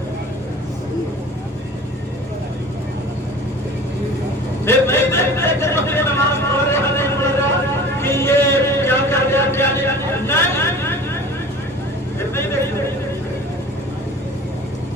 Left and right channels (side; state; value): both; normal; correlation 0.42